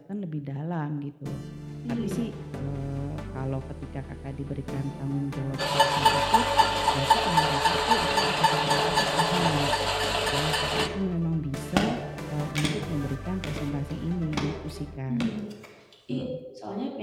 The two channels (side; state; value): both; identical; correlation 1.00